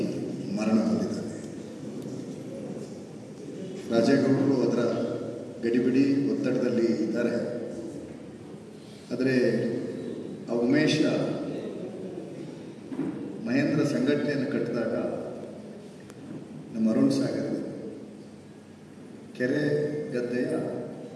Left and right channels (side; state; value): both; identical; correlation 1.00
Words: ಮರಣ ಹೊಂದಿದ್ದಾನೆ. ರಾಜೇಗೌಡರು ಅದರ ಗಡಿಬಿಡಿ ಒತ್ತಡದಲ್ಲಿ ಇದ್ದಾರೆ. ಆದರೆ ಆ ಉಮೇಶ ಮಹೇಂದ್ರ ಸಂಘಟನೆಯನ್ನು ಕಟ್ಟಿದಾಗ ನಮ್ಮ ಅರುಣ್ ಸಾಗರ್ ಕೆರೆ ಗದ್ದೆಯ